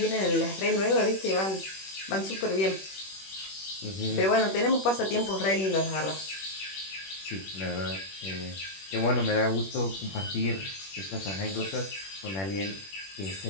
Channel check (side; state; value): right; late; 21 ms